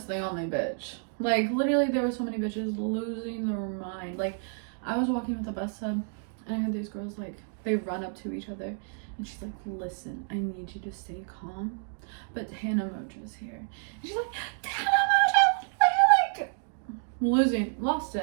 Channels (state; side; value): silent; left; 58 dB below the other